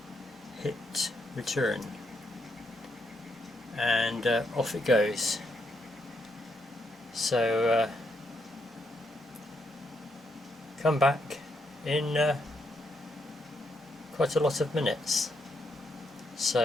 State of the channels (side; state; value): both; normal; correlation 0.78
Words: hit return, and off it goes. So come back in quite a lot of minutes.